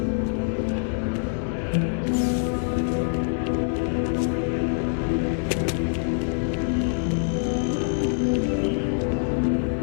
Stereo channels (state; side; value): silent; right; 61 dB below the other